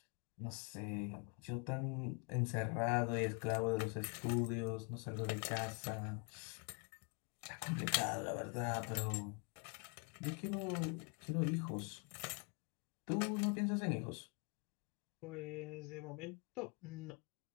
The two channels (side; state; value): right; quieter; 33.7 dB